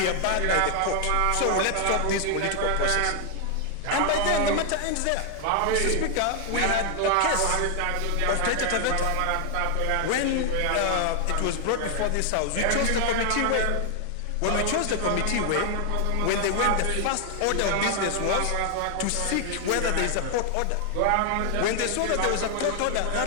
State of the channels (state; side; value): different; both; correlation 0.00